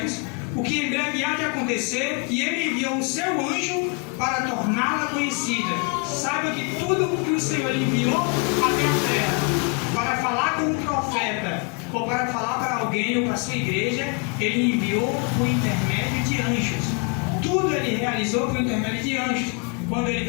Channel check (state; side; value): quieter; right; 33.3 dB